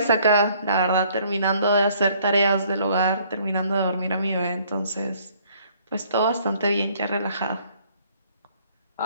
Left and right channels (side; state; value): both; inverted; correlation -0.61